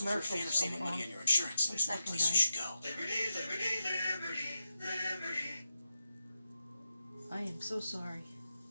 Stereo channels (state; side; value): inverted; both; correlation -0.88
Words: coming on. 1 second, guys. I am so sorry.